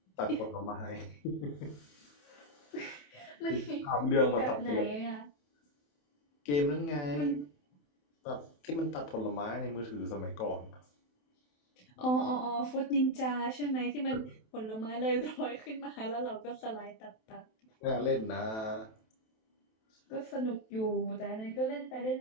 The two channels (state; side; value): late; right; 27 ms